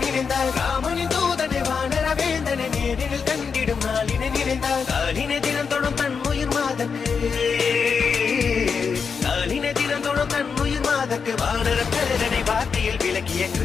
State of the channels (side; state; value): right; quieter; 5.8 dB